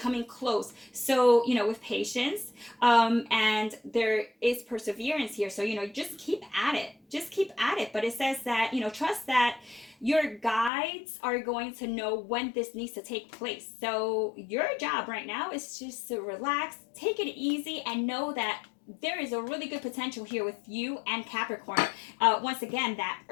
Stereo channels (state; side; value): drops out; right; at 10.7 s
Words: close. So, with patience, and there is perseverance here. So, just keep at it. Just keep at it. But it says that, trust that your guides are going to know when this needs to take place. So your job right now is just to relax, take it easy, and know that there is a really good potential here with you and Capricorn. Once again, that